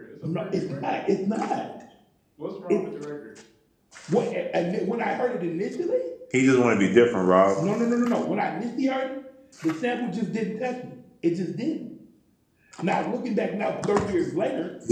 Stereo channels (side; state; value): both; identical; correlation 1.00